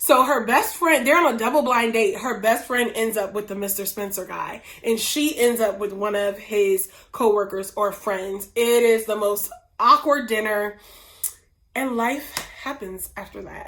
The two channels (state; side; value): identical; both; correlation 1.00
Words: her best friend, they're on a double blind date. Her best friend ends up with the Mr. Spencer guy, and she ends up with one of his coworkers or friends. It is the most awkward dinner, and life happens after